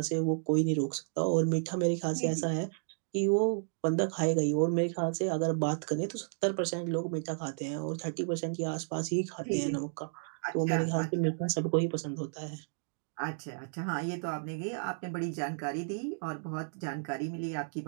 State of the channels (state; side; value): silent; left; digital silence